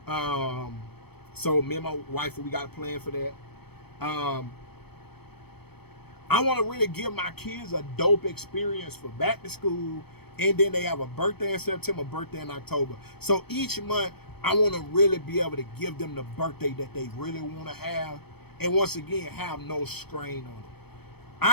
So me and my wife, we got a plan for that. I want to really give my kids a dope experience for back to school, and then they have a birthday in September, birthday in October. So each month, I want to really be able to give them the birthday that they really want to have, and once again, have no strain on it.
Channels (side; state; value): right; late; 0.97 ms